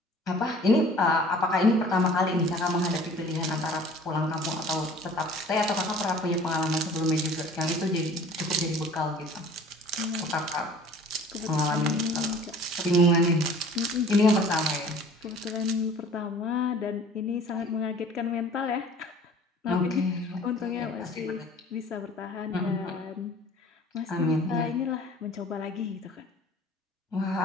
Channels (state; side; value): normal; both; correlation 0.48